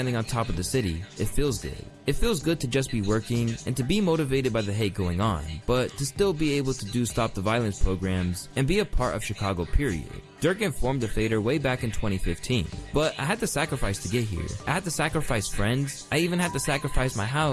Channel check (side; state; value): both; identical; correlation 1.00